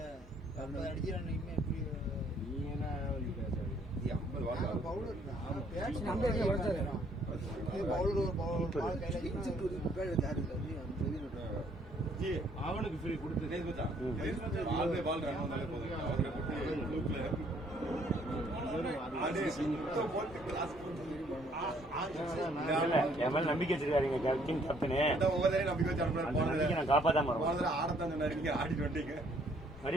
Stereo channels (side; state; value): both; normal; correlation 0.64